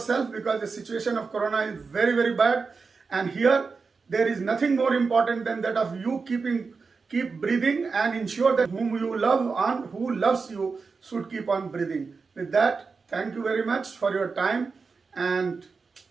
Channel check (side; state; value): left; quieter; 4.7 dB